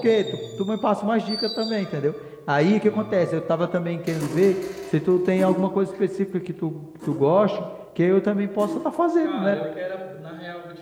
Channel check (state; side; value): identical; both; correlation 1.00